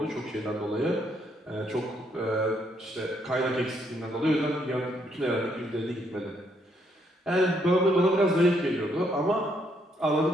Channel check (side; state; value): both; normal; correlation 0.73